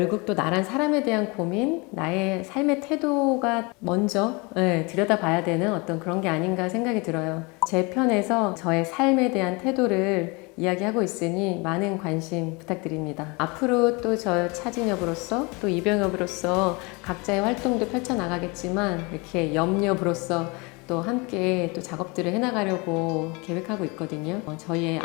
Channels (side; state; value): right; quieter; 28.0 dB